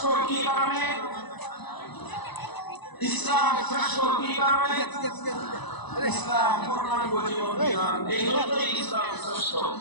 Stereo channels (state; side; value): late; right; 1.0 ms